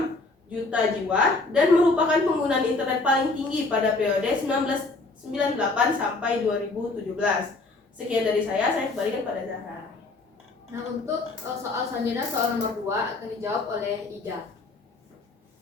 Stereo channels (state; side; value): quieter; right; 3.4 dB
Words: juta jiwa dan merupakan penggunaan internet paling tinggi pada periode 1998 sampai 2017. Sekian dari saya kembalikan pada Zahra. Nah, untuk soal selanjutnya, soal nomor 2 akan dijawab oleh Ija.